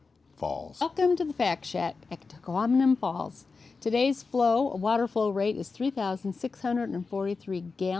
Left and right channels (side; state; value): right; quieter; 4.4 dB